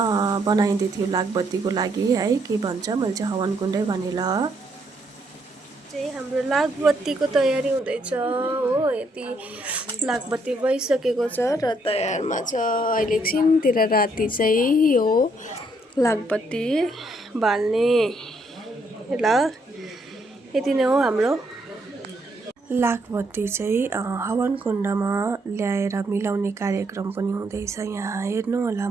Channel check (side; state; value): both; normal; correlation 0.72